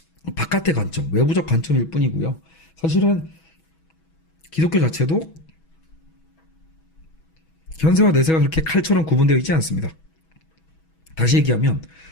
바깥의 관점, 외부적 관점일 뿐이고요. 사실은 기독교 자체도 현세와 내세가 그렇게 칼처럼 구분되어 있지 않습니다. 다시 얘기하면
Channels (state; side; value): late; right; 6.2 ms